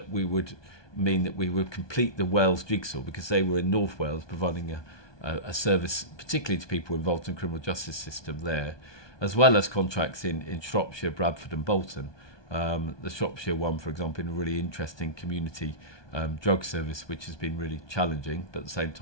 would mean that we would complete the Wales jigsaw, because they were in North Wales providing a service particularly to people involved in the criminal justice system there, as well as contracts in Shropshire, Bradford and Bolton. The Shropshire one, for example, in a really interesting community drug service, which has been really challenging, but at the same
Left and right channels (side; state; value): right; late; 1.2 ms